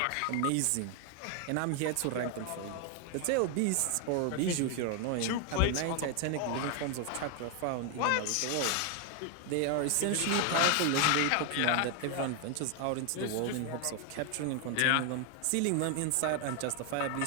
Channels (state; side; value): different; both; correlation 0.01